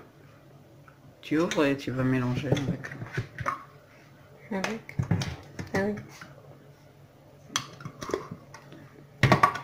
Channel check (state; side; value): identical; both; correlation 1.00